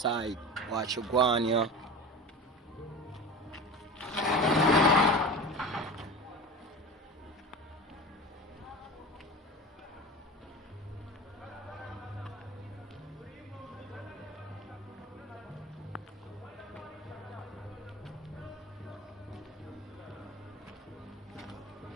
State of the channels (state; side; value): normal; both; correlation 0.32